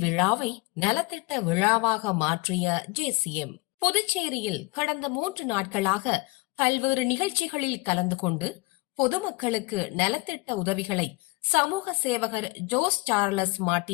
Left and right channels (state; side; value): quieter; right; 25.7 dB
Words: விழாவை நலத்திட்ட விழாவாக மாற்றிய ஜேசிஎம். புதுச்சேரியில் கடந்த 3 நாட்களாக பல்வேறு நிகழ்ச்சிகளில் கலந்து கொண்டு பொதுமக்களுக்கு நலத்திட்ட உதவிகளை சமூக சேவகர் ஜோஸ் சார்லஸ்